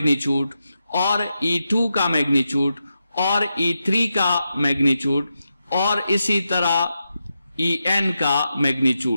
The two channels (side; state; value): both; inverted; correlation -0.88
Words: और E2 का मैग्नीट्यूड और E3 का मैग्नीट्यूड और इसी तरह En का